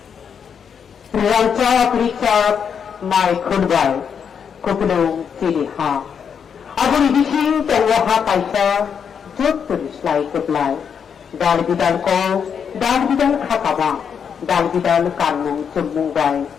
Rancak Richard Mai Khunbai Kupulung Ciliha Aburi Bising Tengwaha Kaisa Jut Tulislai Kuplai Dal Bidal Ko Dal Bidal Khataba Dal Bidal Kanmung Cumungbai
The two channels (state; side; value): quieter; right; 7.2 dB